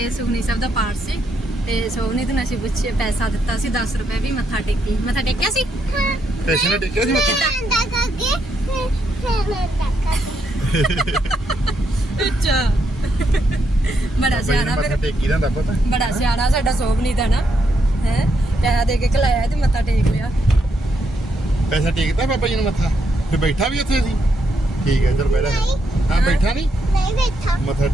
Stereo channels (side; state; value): both; normal; correlation 0.78